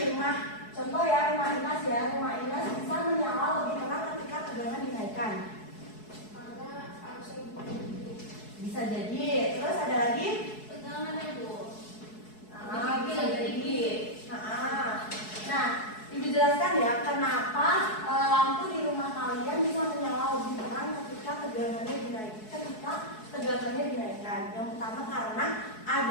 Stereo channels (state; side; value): late; right; 4.7 ms